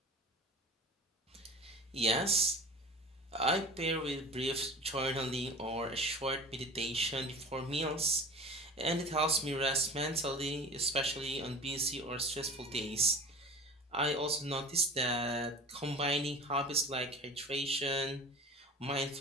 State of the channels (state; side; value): normal; both; correlation 0.38